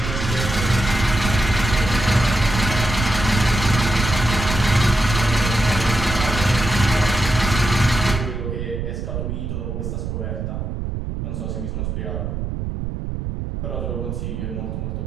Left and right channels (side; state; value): right; noise; rumble, 4 dB below the sound